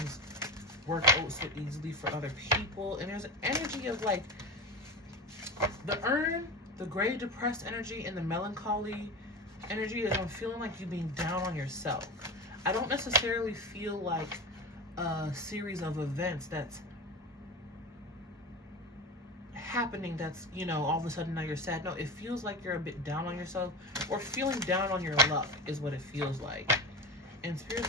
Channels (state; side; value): normal; both; correlation 0.26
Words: work out so easily for other people. And there's an energy of like the urn, the gray depressed energy, and the melancholy energy is I'm feeling like you being down on yourself. I don't necessarily feel like a series of events that's happening that's, you know, all of a sudden now you're sad. No, it feels like you're a bit down on yourself or feeling down on your luck is what it feels like. And